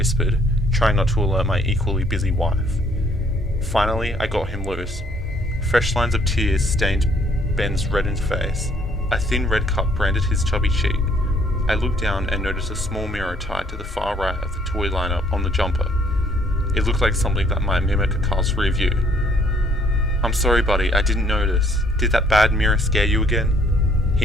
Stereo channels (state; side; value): normal; both; correlation 0.64